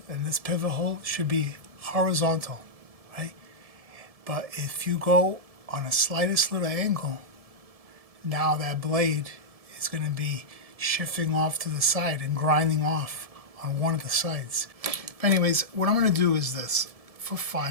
and this pivot hole should be horizontal, right? But if you go on a slightest little angle, now that blade is going to be shifting off to the side and grinding off on one of the sides. But anyways, what I'm going to do is this. For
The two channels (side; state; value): left; late; 1.7 ms